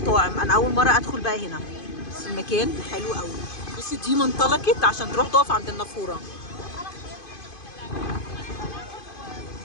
انا اول مره ادخل بقى هنا، بس المكان حلو قوي. بصي دي منطلقت عشان تروح تقف عند النافوره.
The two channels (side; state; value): right; late; 2.5 ms